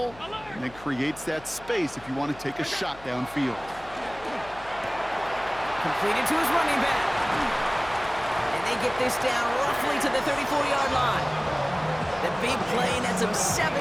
and then creates that space if you want to take a shot downfield. Completed to his running back. And they get this down roughly to the 34-yard line. The big play nets him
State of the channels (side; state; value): left; noise; hum, 21 dB below the sound